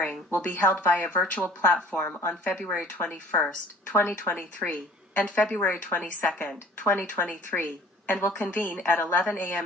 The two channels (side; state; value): both; normal; correlation 0.50